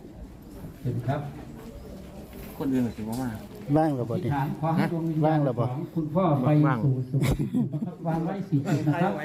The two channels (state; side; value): identical; both; correlation 1.00